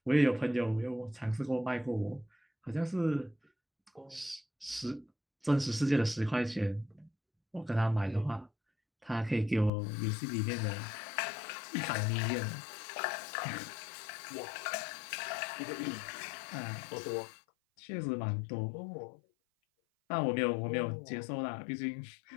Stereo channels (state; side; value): drops out; right; at 9.7 s